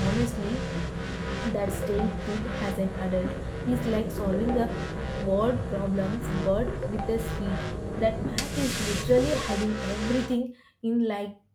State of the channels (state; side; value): identical; both; correlation 1.00